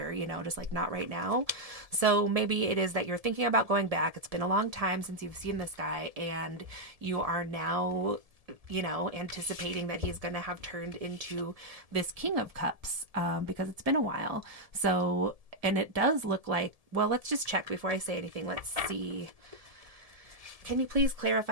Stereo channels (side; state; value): left; late; 1.7 ms